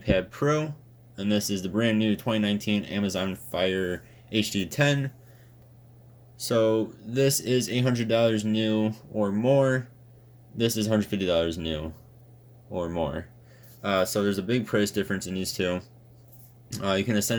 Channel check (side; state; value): both; identical; correlation 1.00